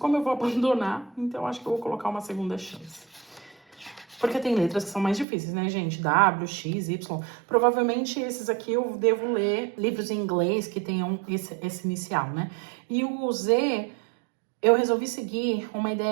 eu vou abandonar, então eu acho que eu vou colocar uma segunda chance. Porque tem letras que são mais difíceis, né, gente? W, X, Y. Provavelmente esses aqui eu devo ler livros em inglês que tenham esse inicial, né? E o Z, eu resolvi seguir uma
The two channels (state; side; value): drops out; left; at 5.2 s